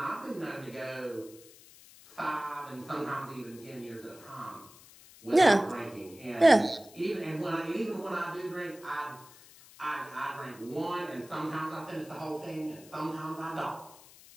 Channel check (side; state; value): left; noise; hiss, 21 dB below the sound